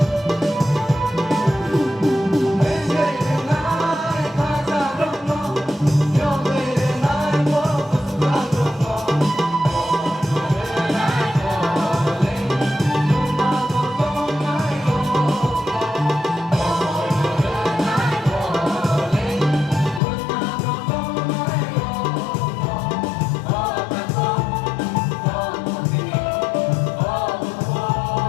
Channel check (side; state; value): right; drops out; at 20.0 s